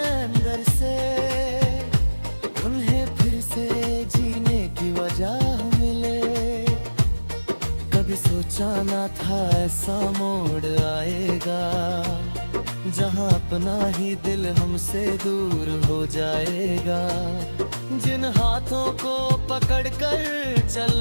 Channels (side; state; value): both; inverted; correlation -1.00